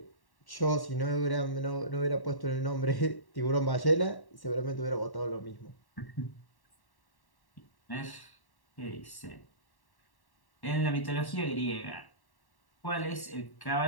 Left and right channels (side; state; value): right; late; 1.1 ms